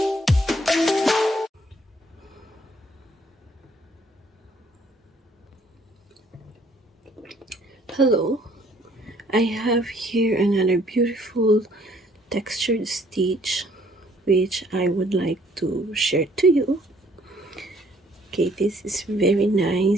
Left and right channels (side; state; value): both; normal; correlation 0.62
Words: I have here another beautiful textured stitch which I would like to share to you. Okay, this is very